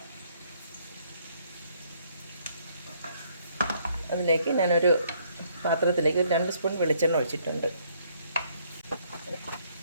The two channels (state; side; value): inverted; both; correlation -0.67